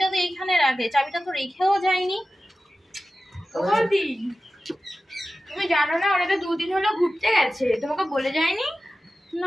তো এইখানে রাখে, চাবিটা তো রেখেও যায়নি। তুমি জানো না ওরা তো 2 দিন হলো ঘুরতে গেছে, তোমাকে বলে যায়নি?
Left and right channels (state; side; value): normal; both; correlation 0.94